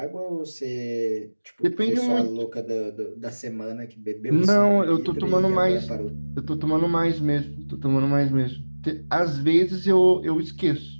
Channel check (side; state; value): both; inverted; correlation -1.00